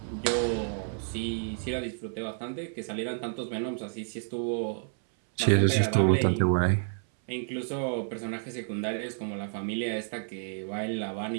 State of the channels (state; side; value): silent; left; 58 dB below the other